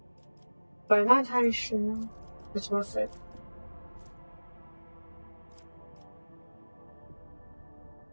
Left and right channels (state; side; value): inverted; both; correlation -1.00